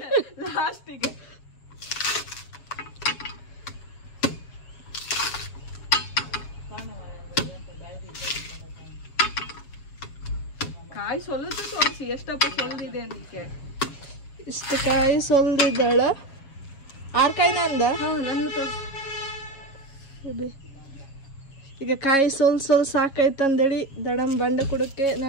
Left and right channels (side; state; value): right; late; 7.3 ms